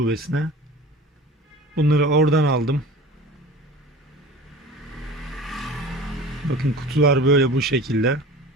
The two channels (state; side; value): normal; both; correlation 0.39